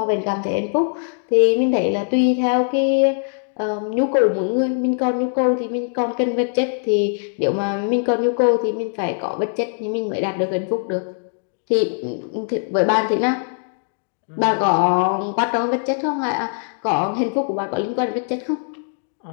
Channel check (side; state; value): right; silent; digital silence